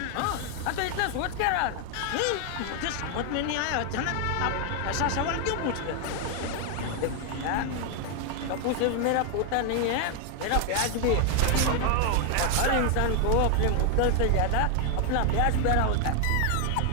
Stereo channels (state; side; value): different; both; correlation 0.00